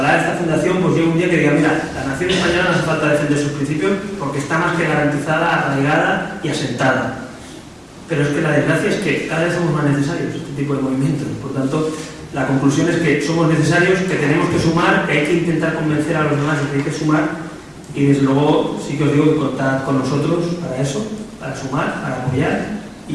esta fundación pues llegue un día que diga, mira, la nación española no hace falta defender sus principios porque está más que garantizada, arraigada y asentada. Pero es que la desgracia es que cada vez somos más necesarios este tipo de movimientos. Por tanto, la conclusión es que somos necesarios, que tenemos que sumar, que hay que intentar convencer a los demás de que hay que sumar, y desde luego sí que os digo que contad con nosotros para eso, para sumar, para apoyar,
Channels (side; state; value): both; identical; correlation 1.00